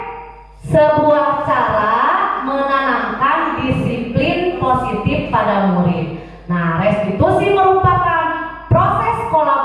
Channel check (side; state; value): both; identical; correlation 1.00